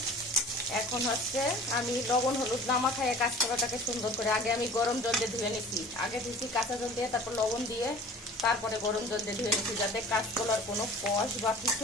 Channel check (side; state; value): both; normal; correlation 0.44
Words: এখন হচ্ছে আমি লবণ হলুদ নামা খাইয়ে কাঁচকলাটাকে সুন্দর করে আগে আমি গরম জল দিয়ে ধুয়ে নিচ্ছি। আগে দিচ্ছি কাঁচা জল দিয়ে, তারপর লবণ দিয়ে, তারপরে গরম জল দিয়ে ধুয়ে নিচ্ছি, যাতে কাঁচকলার কোনো কষ বা